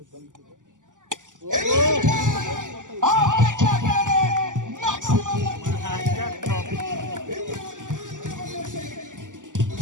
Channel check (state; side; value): late; left; 0.87 ms